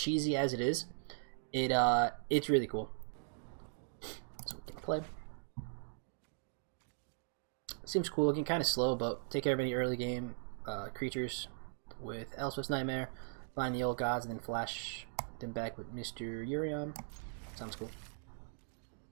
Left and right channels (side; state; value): left; silent; digital silence